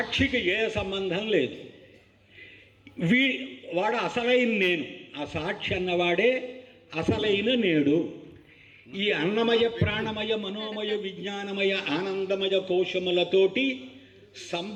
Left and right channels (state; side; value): identical; both; correlation 1.00